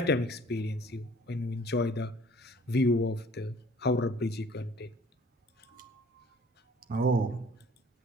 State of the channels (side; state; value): both; normal; correlation 0.53